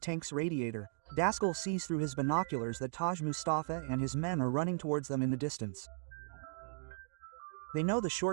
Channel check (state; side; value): silent; left; digital silence